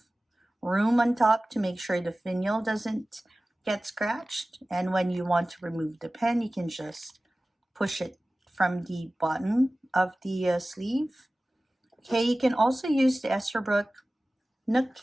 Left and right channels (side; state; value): both; normal; correlation 0.97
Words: room on top to make sure the finial doesn't get scratched. And when you want to remove the pen, you can just push it from the bottom of the sleeve. Okay, you can also use the Esterbrook Nook